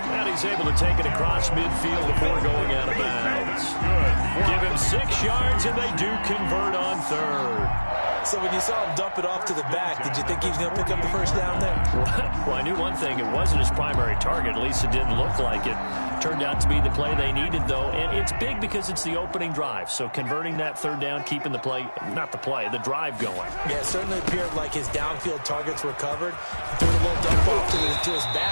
And he's able to take it across midfield before going out of bounds. Give him 6 yards, and they do convert on third. So when you saw him dump it off to the back, did you think he was going to pick up the first down there? Well, I knew one thing. It wasn't his primary target. At least it didn't look like it. Turned out to be the play they needed, though. And it's big because it's the opening drive. So converting that third down, keeping the play, not the play, the drive going. Yeah, it certainly appeared like his downfield targets were covered. Threw a little dump off to his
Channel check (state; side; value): inverted; both; correlation -1.00